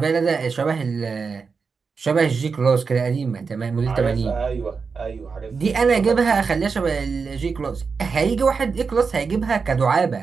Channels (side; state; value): left; quieter; 5.2 dB